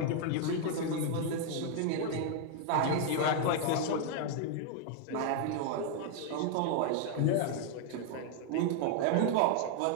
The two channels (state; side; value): different; both; correlation 0.00